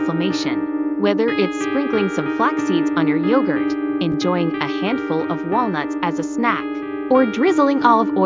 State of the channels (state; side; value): identical; both; correlation 1.00